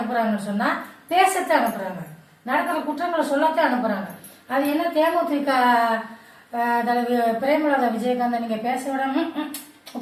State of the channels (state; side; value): identical; both; correlation 1.00